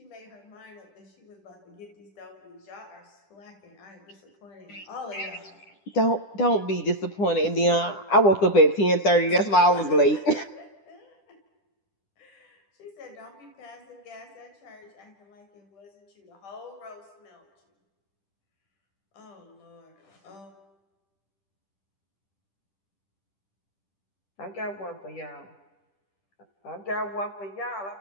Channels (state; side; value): late; right; 9.8 ms